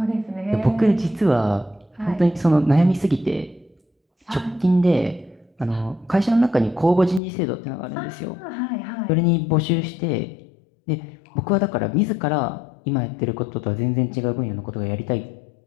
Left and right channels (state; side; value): drops out; right; at 7.2 s